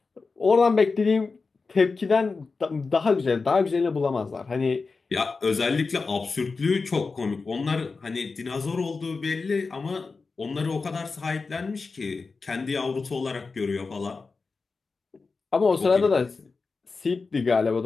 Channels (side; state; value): right; quieter; 4.3 dB